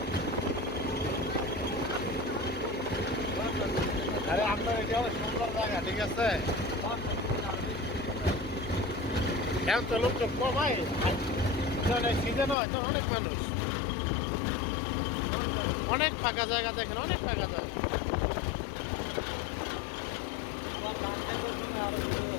আরে আপনার এটা হলো সুন্দর জায়গা, ঠিক আছে। এখন তো লোক তো কমাই, সিজন হয় তো অনেক মানুষ, অনেক ফাঁকা জায়গা দেখেন, অনেক ফাঁকা জায়গা।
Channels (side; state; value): right; drops out; at 12.6 s